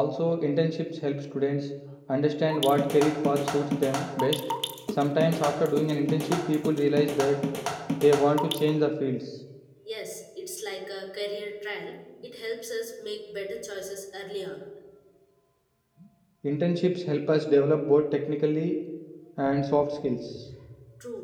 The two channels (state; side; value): identical; both; correlation 1.00